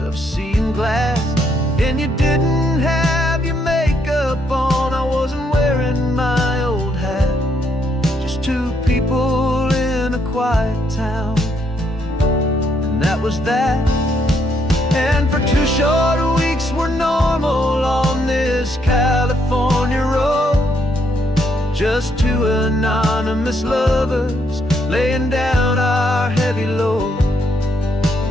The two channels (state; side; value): normal; both; correlation 0.74